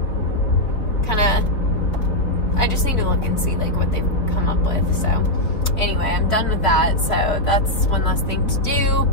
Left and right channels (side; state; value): right; late; 4.7 ms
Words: I just need to look and see like what they've come up with. So anyway, I'm done with that. So that's one less thing to do.